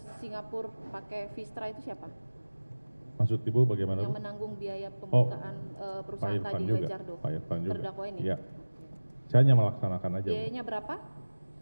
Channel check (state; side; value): inverted; both; correlation -1.00